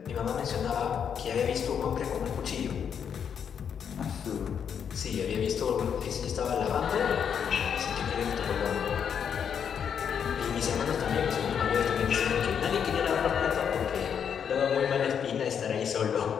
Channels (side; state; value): right; quieter; 7.7 dB